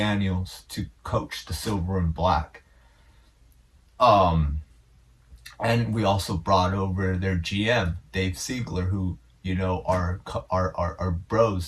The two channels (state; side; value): identical; both; correlation 1.00